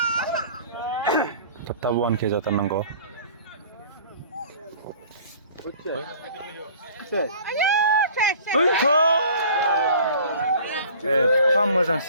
थाब थाब 1K जाथारनांगौ एफा मोजां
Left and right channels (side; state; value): both; inverted; correlation -0.47